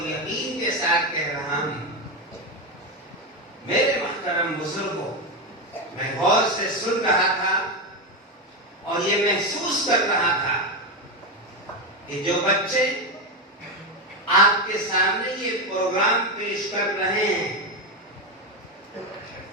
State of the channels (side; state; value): both; normal; correlation 0.12